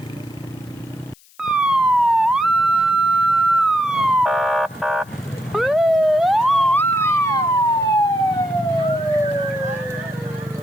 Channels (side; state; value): left; noise; hiss, 28 dB below the sound